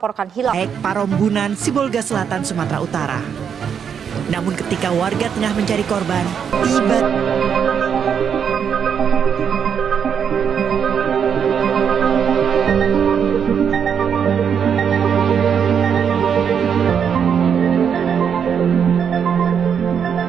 hilang. Parombunan, Sibolga Selatan, Sumatera Utara. Namun ketika warga tengah mencari korban, tiba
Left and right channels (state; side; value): quieter; left; 7.5 dB